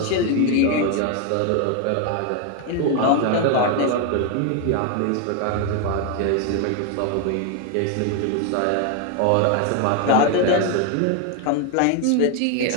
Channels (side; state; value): both; different; correlation 0.01